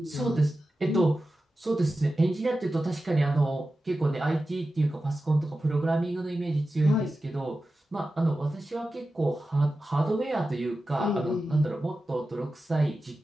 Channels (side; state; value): both; normal; correlation 0.93